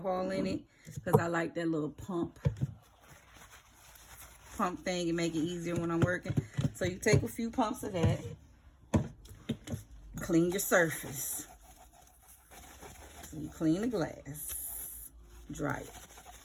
in it because I like that little pump thing and make it easier when I'm working. So you take a few pumps of that. Clean your surface. So you clean the glass. Dry it.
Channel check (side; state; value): both; identical; correlation 1.00